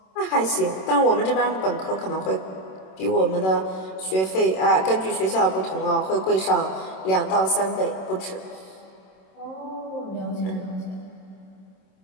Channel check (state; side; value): late; right; 26 ms